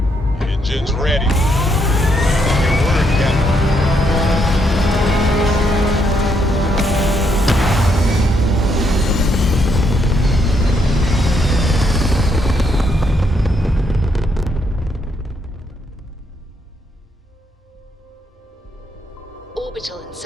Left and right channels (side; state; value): both; normal; correlation 0.75